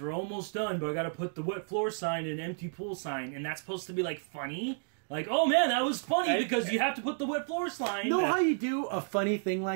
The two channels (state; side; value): silent; left; digital silence